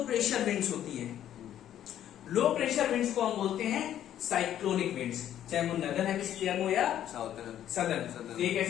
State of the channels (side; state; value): right; quieter; 11.1 dB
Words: प्रेशर विंड्स होती है, लो प्रेशर विंड्स को हम बोलते हैं साइक्लोनिक विंड्स, चाहे वो नदर्न हेमिस्फीयर में हो या साउथर्न सदर्न। ये